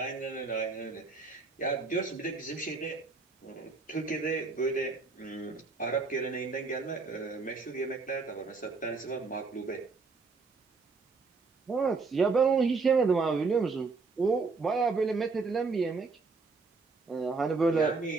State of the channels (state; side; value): quieter; left; 4.3 dB